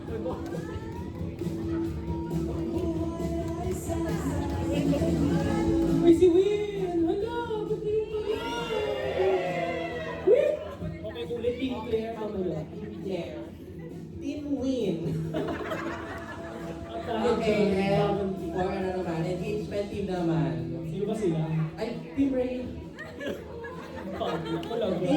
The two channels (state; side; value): identical; both; correlation 1.00